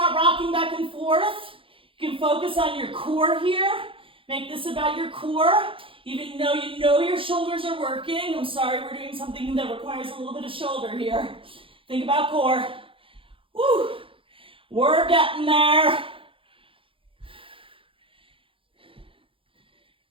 rocking back and forth. You can focus on your core here. Make this about your core. Even though you know your shoulders are working. I'm sorry, we're doing something that requires a little bit of shoulder here. Think about core. Woo! We're getting there.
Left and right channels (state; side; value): late; left; 0.26 ms